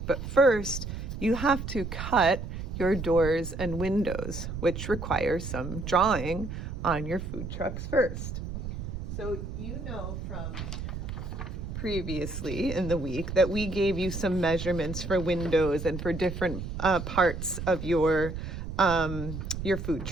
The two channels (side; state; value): right; noise; rumble, 6 dB below the sound